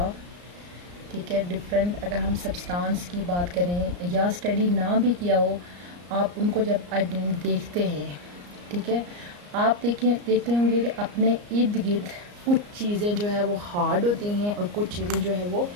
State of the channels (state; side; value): late; left; 34 ms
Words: ठीक है, डिफरेंट अगर हम सब्सटेंस की बात करें या स्टडी ना भी किया हो, आप उनको जब देखते हैं, ठीक है, आप देखते होंगे कि अपने इर्द गिर्द कुछ चीज़ें जो है वो हार्ड होती हैं और कुछ चीज़ें जो है वो